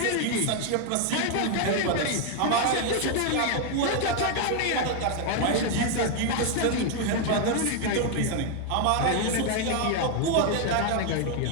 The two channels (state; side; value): different; both; correlation 0.01